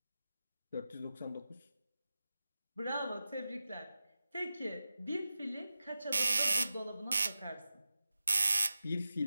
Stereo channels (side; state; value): both; inverted; correlation -0.93